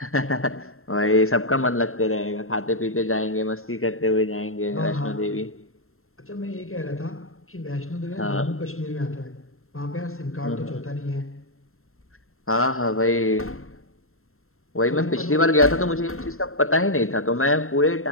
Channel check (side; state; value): right; late; 0.62 ms